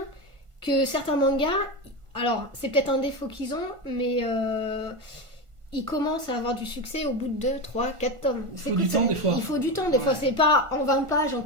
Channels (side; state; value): left; late; 1.5 ms